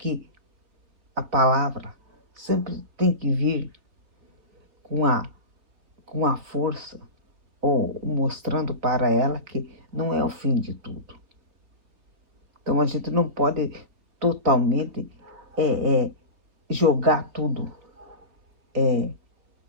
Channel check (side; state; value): left; late; 3.8 ms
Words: a palavra sempre tem que vir com a força, ou mostrando para ela que não é o fim de tudo. Então a gente não pode totalmente jogar tudo